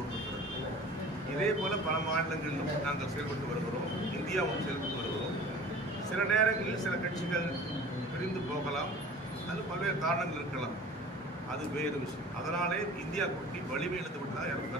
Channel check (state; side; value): normal; both; correlation 0.43